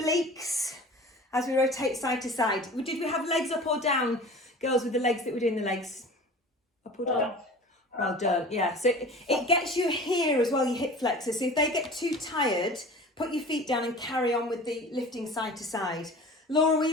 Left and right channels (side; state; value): both; normal; correlation 0.40